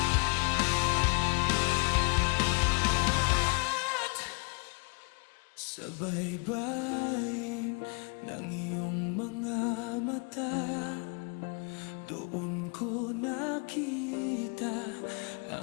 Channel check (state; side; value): quieter; right; 33.5 dB